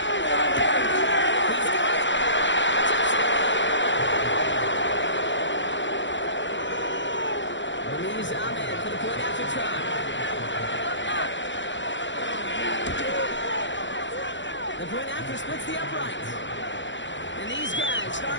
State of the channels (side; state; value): right; late; 0.54 ms